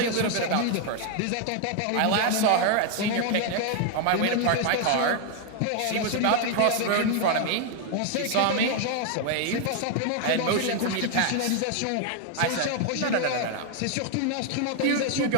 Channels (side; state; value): both; different; correlation 0.00